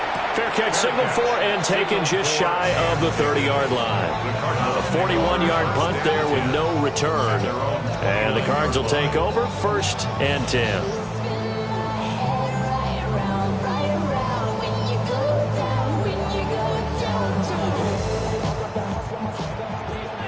Fair catch signal for and taken just shy of the 30-yard line. A 41-yard punt there with no return. And the Cards will take over 1st and 10.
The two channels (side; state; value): both; identical; correlation 1.00